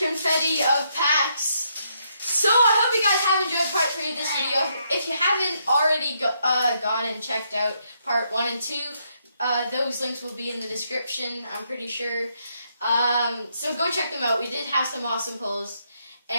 of packs. So, I hope you guys have enjoyed part 3 of this video. If you haven't already gone and checked out part 1 and 2, those links will be in the description, I'm pretty sure. So go check them out. We did have some awesome pulls.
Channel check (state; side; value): inverted; both; correlation -0.76